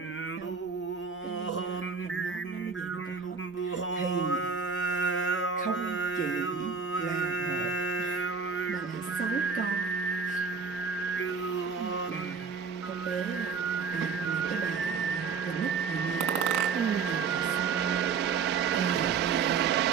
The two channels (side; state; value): left; quieter; 5.5 dB